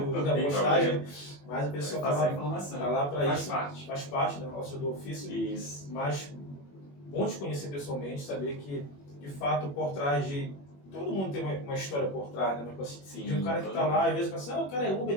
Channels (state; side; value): late; right; 21 ms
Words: da postagem, mas o pessoal tá lá para isso. Faz parte da nossa do ofício. Isso. Mas bom te conhecer pessoalmente, saber que, de fato, por trás de... Todo mundo tem uma história por trás, né? Mas, assim, de um cara que tá lá, às vezes pensa, o cara é Uber,